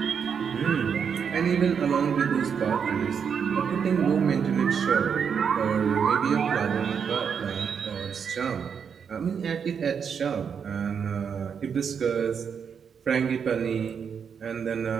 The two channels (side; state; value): left; quieter; 6.9 dB